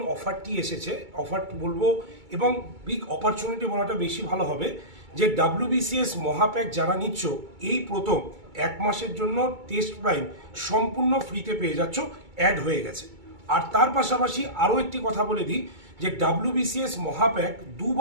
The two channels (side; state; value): left; late; 2.3 ms